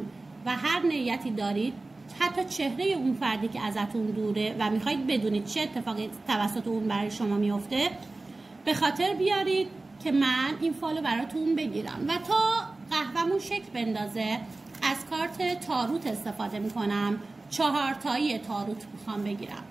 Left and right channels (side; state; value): left; quieter; 3.2 dB